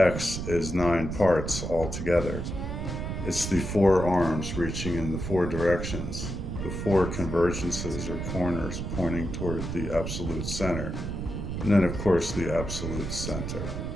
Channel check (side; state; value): right; noise; rumble, 5 dB below the sound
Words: is 9 parts altogether. It's the 4 arms reaching in the 4 directions, the 4 convergences or corners pointing toward the absolute center, and then of course the absolute center.